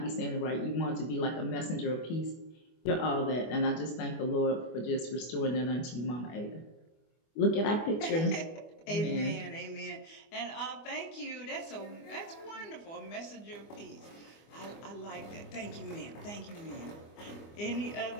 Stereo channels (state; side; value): late; right; 24 ms